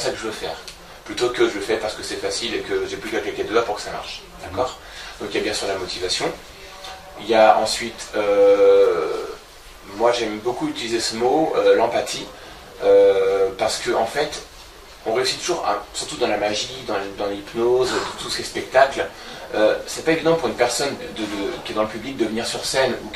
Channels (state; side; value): identical; both; correlation 1.00